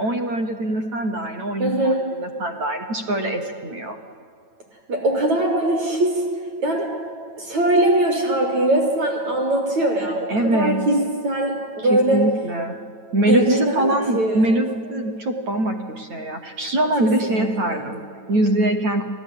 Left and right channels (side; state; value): left; late; 9.1 ms